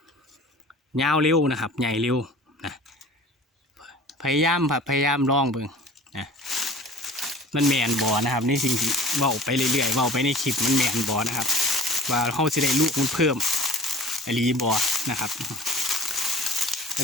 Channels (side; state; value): both; normal; correlation 0.44